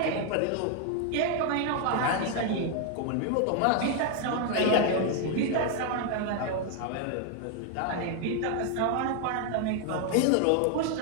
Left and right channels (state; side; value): different; both; correlation 0.01